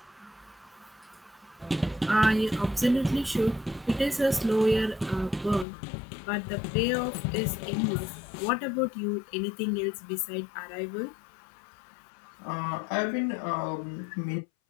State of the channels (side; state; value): right; drops out; at 5.7 s